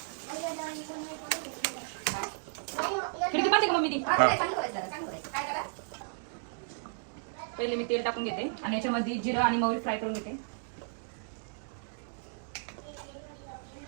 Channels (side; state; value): left; silent; digital silence